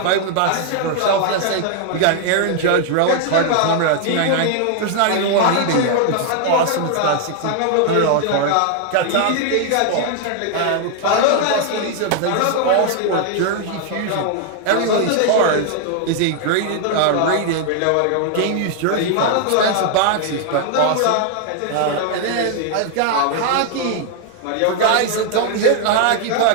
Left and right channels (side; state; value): both; different; correlation 0.00